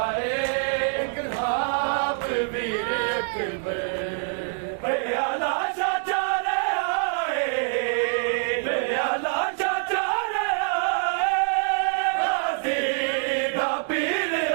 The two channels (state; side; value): silent; left; 61 dB below the other